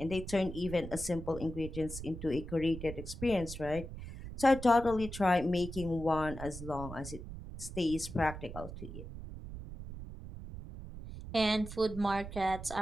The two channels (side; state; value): right; noise; rumble, 10 dB below the sound